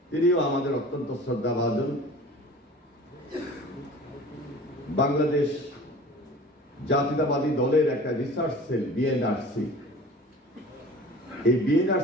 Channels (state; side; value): normal; both; correlation 0.42